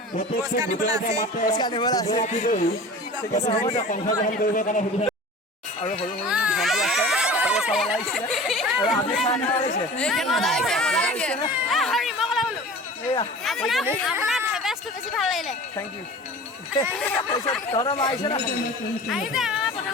পুৰস্কাৰ নিবলৈ আছে আৰু সৰু সৰু ভণ্টি আছে চাবলৈ আহিছিলে আৰু আপুনি চাই থেংক ইউ তহঁতৰ মা আহিছে না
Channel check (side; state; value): both; normal; correlation 0.39